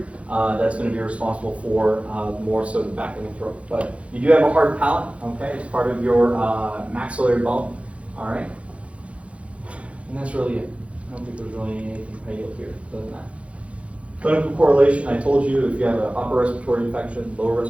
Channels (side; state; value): left; late; 0.062 ms